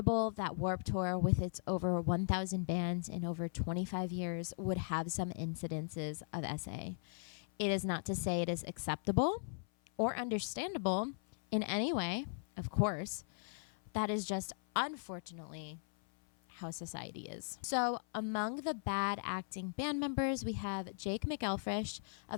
that Warped Tour, with its over 1,000 bands in over 25 years, would have some incidences of SA. It is not to say it is acceptable or understandable in any way, of course. That is just, unfortunately, how society is. So among the bad acting band members, we have Jake McElfresh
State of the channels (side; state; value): right; silent; 52 dB below the other